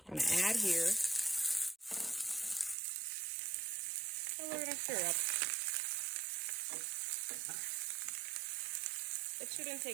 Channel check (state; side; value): drops out; left; at 2.8 s